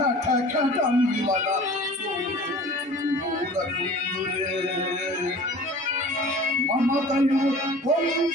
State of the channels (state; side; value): normal; both; correlation 0.43